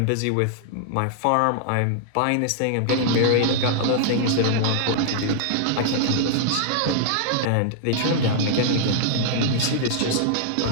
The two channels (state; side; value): different; both; correlation -0.01